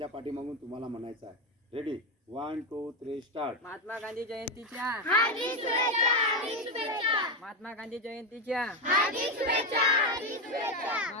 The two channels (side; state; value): both; normal; correlation 0.11